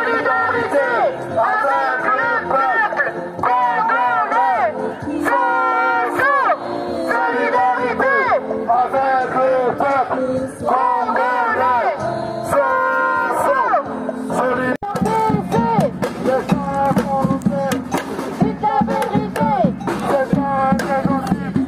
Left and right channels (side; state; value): both; identical; correlation 1.00